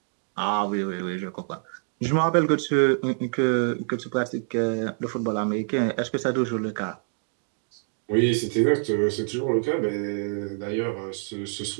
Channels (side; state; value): left; silent; digital silence